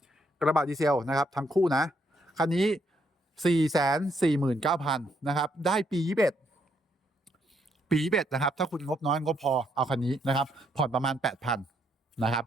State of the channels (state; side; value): normal; both; correlation 0.73